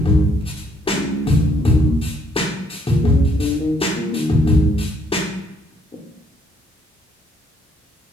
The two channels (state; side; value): normal; both; correlation 0.68